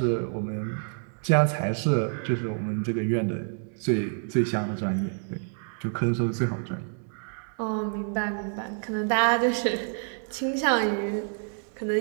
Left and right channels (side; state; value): left; silent; 60 dB below the other